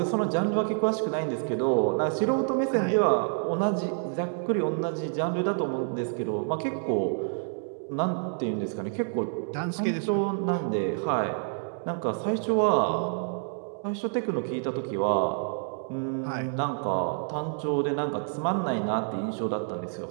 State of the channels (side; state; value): left; silent; digital silence